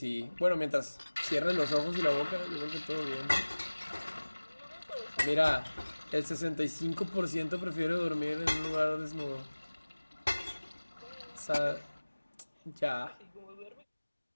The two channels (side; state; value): both; inverted; correlation -1.00